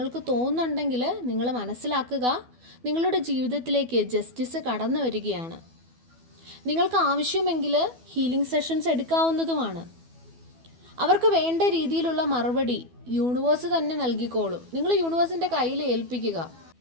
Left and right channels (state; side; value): late; left; 12 ms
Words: തോന്നുന്നുണ്ടെങ്കിൽ നിങ്ങൾ മനസ്സിലാക്കുക, നിങ്ങളുടെ ജീവിതത്തിലേക്ക് ജസ്റ്റിസ് കടന്നു വരികയാണ്. നിങ്ങൾക്ക് ആവശ്യമെങ്കിൽ ഹീലിംഗ് സെഷൻസ് എടുക്കാവുന്നതുമാണ്. അവർക്ക് വേണ്ട രീതിയിലുള്ള മറുപടി യൂണിവേഴ്സ് തന്നെ നൽകിക്കോളും. നിങ്ങൾ യൂണിവേഴ്സിൻ്റെ കയ്യിൽ ഏൽപ്പിക്കുക.